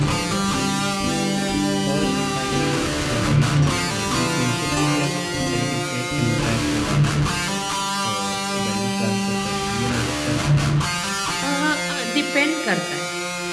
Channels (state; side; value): identical; both; correlation 1.00